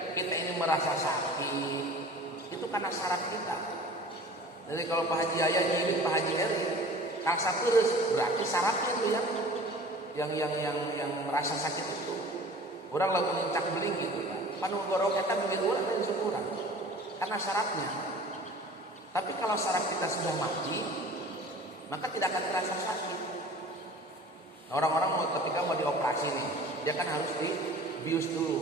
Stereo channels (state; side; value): normal; both; correlation 0.43